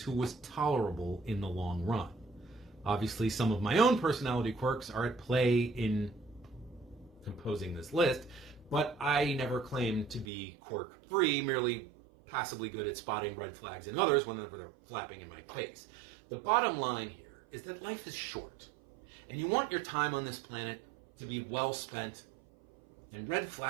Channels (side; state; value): left; drops out; at 10.2 s